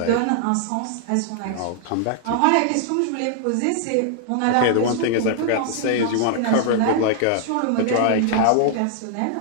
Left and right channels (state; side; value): different; both; correlation -0.01